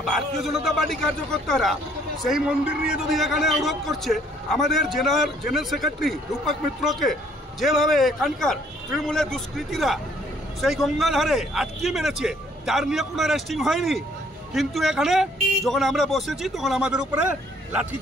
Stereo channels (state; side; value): normal; both; correlation 0.62